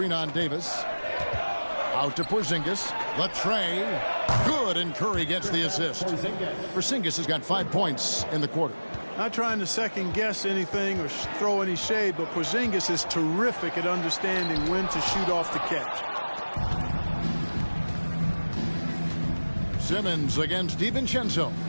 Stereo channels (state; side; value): inverted; both; correlation -1.00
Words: on Davis. Out to Porzingis. The tray. Good, and Curry gets the assist. Porzingis has got 5 points in the quarter. Not trying to second-guess anything or throw any shade, but Porzingis is terrific at understanding when to shoot off the catch. Simmons against DiVincenzo.